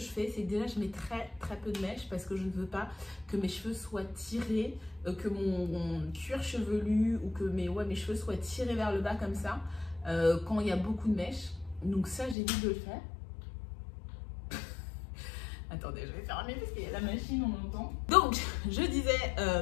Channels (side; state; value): right; drops out; at 12.4 s